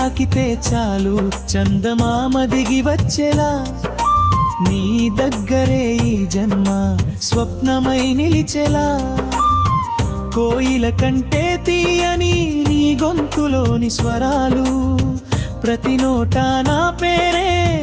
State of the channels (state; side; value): identical; both; correlation 1.00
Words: చాలు చందమామ దిగి వచ్చేలా, నీ దగ్గరే ఈ జన్మ స్వప్నమై నిలిచెలా. కోయిల కంటే తీయని నీ గొంతులోని స్వరాలు, ప్రతి నోటా నా పేరే